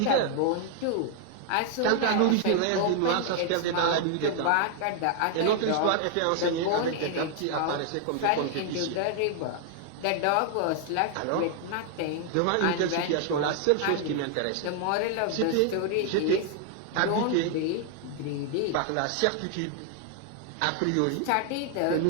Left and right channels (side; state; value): both; different; correlation 0.00